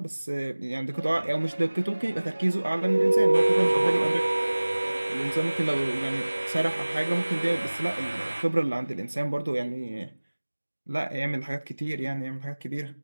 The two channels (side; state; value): both; inverted; correlation -1.00